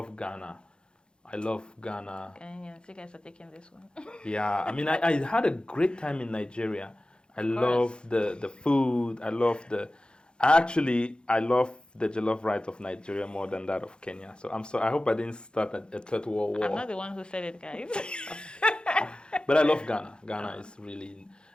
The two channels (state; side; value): late; right; 0.050 ms